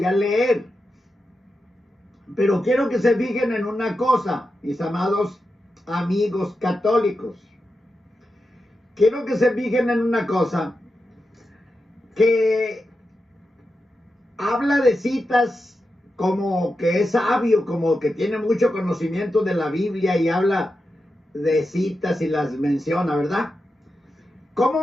a leer. Pero quiero que se fijen en una cosa, mis amados amigos católicos. Quiero que se fijen en una cosa, que habla de citas como que es sabio, como que tiene mucho conocimiento de la Biblia y habla de citas y las menciona, ¿verdad?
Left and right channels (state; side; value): normal; both; correlation 0.89